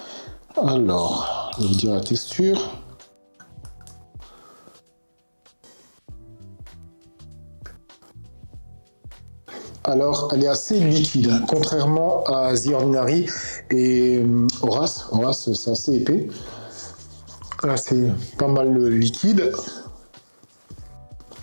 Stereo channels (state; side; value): inverted; both; correlation -1.00